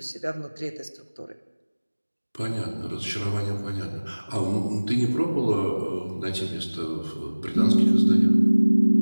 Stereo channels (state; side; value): inverted; both; correlation -1.00